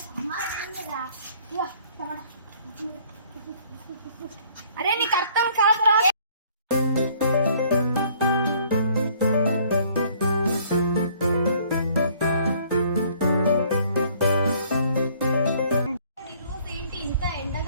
అరే నీకు అర్థం కాదురా. ఏంటి ఇంత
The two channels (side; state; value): both; inverted; correlation -0.59